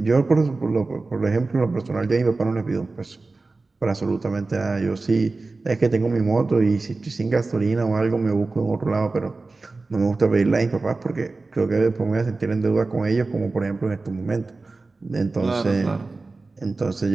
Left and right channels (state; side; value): quieter; left; 3.6 dB